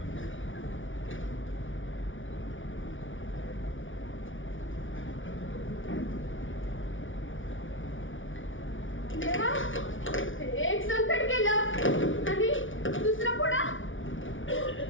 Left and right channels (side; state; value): right; late; 0.57 ms